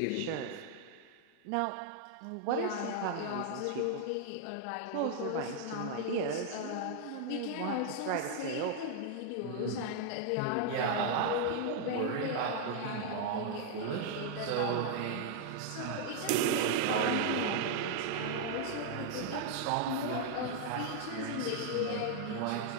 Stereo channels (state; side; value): different; both; correlation 0.00